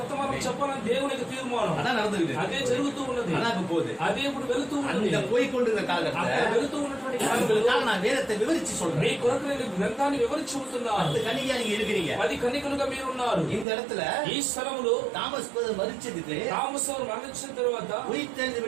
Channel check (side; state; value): left; drops out; at 13.7 s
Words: చెప్పాలని దేవుని యొక్క తీర్మానం. அதான் நடந்துகிட்டு, అదే జరుగుతూ ఉన్నది, அதான் இப்ப போகுது. అదే ఇప్పుడు వెళుతూ ఉన్నది. அந்த போய்கொண்டிருந்த காலகட்டத்துல వెళుతూ ఉన్నటువంటి కాలంలో நான் வேதத்தை விவரிச்சு சொல்றேன். మీ కొరకు నేను గ్రంథాన్ని వివరించి చెబుతున్నాను. 10 కన్యకగా நீங்க இருக்கிறீங்க, 10 కన్యకలుగా మీరు ఉన్నారు. இந்த இடத்துல ఈ స్థలములో தாமஸ் மரிச்சதுக்கு తామసు మరణించిన తరువాత உயிர்த்தெழுந்து